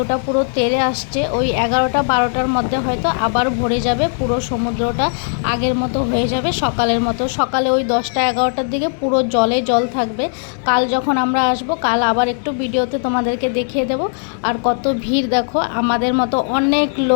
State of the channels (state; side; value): silent; right; 68 dB below the other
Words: পুরো তেড়ে আসছে। ওই 11টা 12টার মধ্যে হয়তো আবার ভরে যাবে, পুরো সমুদ্রটা আগের মতো হয়ে যাবে, সকালের মতো। সকালে ওই 10টা 11টার দিকে পুরো জলে জল থাকবে। কাল যখন আমরা আসব, কাল আবার একটু ভিডিওতে তোমাদেরকে দেখিয়ে দেব। আর কত ভিড় দেখো, আমাদের মতো অনেক